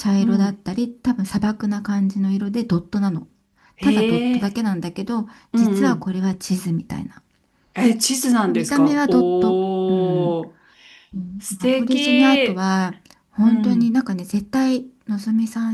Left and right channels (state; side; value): identical; both; correlation 1.00